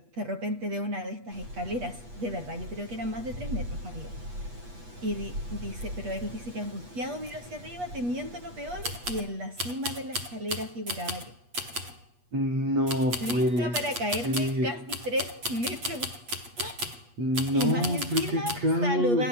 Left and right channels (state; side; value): late; left; 8.3 ms